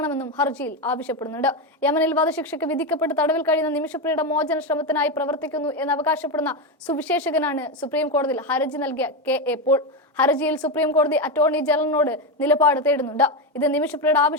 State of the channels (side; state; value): both; normal; correlation 0.11